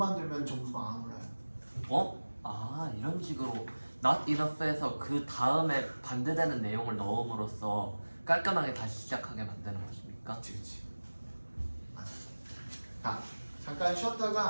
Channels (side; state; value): both; inverted; correlation -1.00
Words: 점수가 안 올라요. 어? 아, 이런 식으로 not enough에서 그 다음에 반대되는 내용을 넣음으로써 깔끔하게 다시 시작하게 만드는 것입니까? 그렇지. 맞아. 자, 잠깐